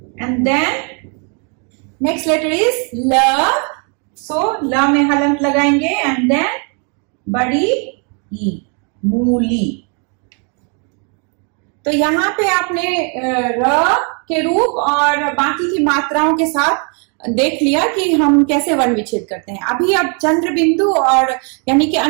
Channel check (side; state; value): left; quieter; 38.2 dB